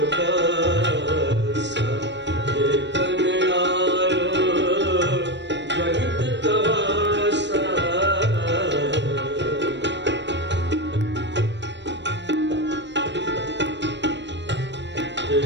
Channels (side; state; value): left; late; 0.52 ms